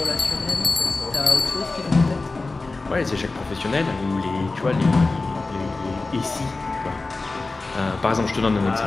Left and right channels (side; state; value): right; quieter; 3.5 dB